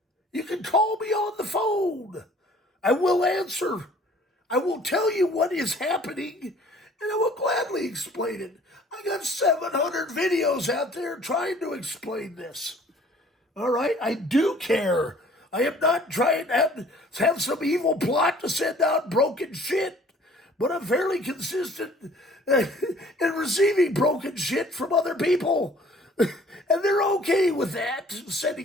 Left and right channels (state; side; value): normal; both; correlation 0.54